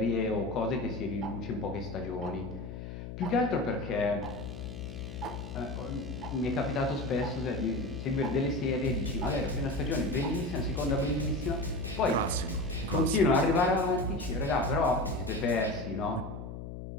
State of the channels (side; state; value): left; noise; hum, 9 dB below the sound